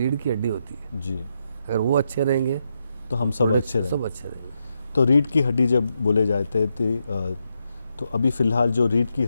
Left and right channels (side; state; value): both; inverted; correlation -0.82